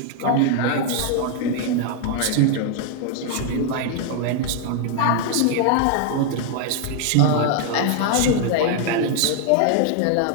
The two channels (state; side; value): different; both; correlation 0.00